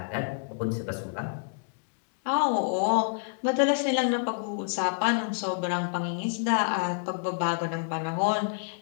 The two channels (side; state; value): right; silent; digital silence